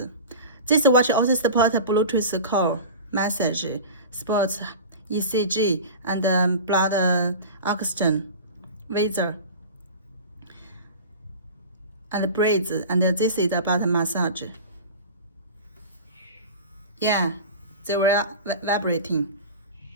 This watch also supports Bluetooth call, message, sports, ECG, and blood oxygen, weather, and breathe. And this is about massage. Yeah, they were vibrating.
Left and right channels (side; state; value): both; inverted; correlation -0.33